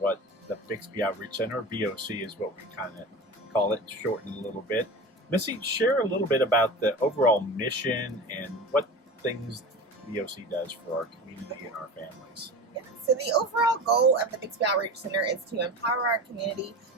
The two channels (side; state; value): both; normal; correlation 0.31